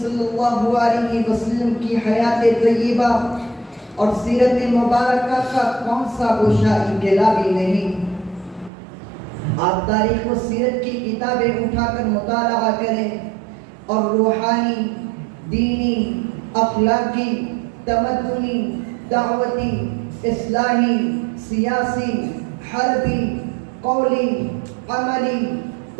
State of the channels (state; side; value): drops out; left; at 8.7 s